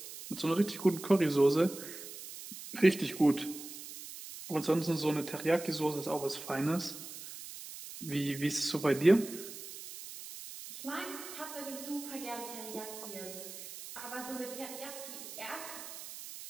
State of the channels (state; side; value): noise; right; hiss, 12 dB below the sound